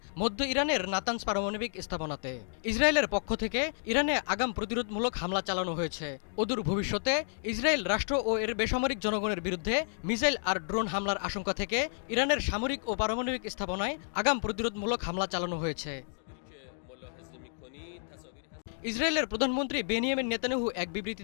মধ্য ইরানের নাতানজ পারমাণবিক স্থাপনাতে। ইসরায়েলের পক্ষ থেকে ইরানে আগাম প্রতিরোধমূলক হামলা চালানো হয়েছে। অদূর ভবিষ্যতে ইসরায়েল রাষ্ট্র ও এর বেসামরিক জনগণের বিরুদ্ধে মিসাইল আর ড্রোন হামলার আশঙ্কা থেকে ইরানের সামরিক ও পারমাণবিক স্থাপনায় আগাম প্রতিরোধমূলক হামলা চালানো হয়েছে। ইসরায়েলের প্রধানমন্ত্রী বেনিয়ামিন নেতানিয়াহু এক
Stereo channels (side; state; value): right; silent; digital silence